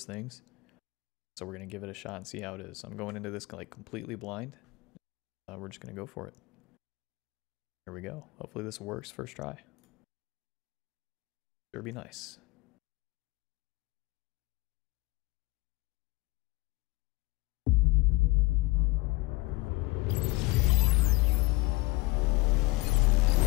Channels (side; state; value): right; quieter; 23.4 dB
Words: things. So we're going to give it a shot and see how it is. I'm going into this like completely blind. We're just going to go for it. Here we go. Hopefully this works first try. Sure be nice.